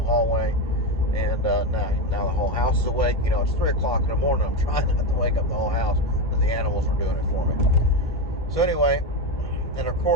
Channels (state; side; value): normal; both; correlation 0.14